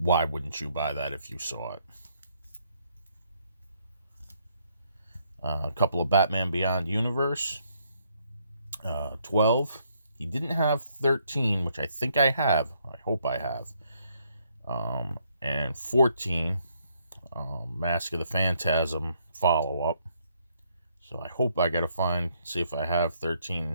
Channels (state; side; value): inverted; both; correlation -0.71